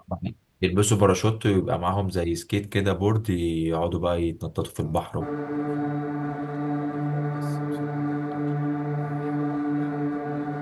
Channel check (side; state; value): both; identical; correlation 1.00